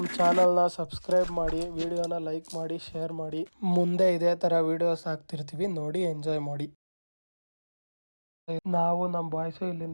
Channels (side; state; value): both; inverted; correlation -1.00